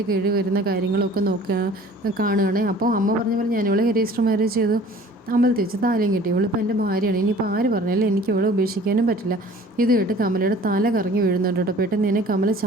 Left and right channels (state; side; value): normal; both; correlation 0.48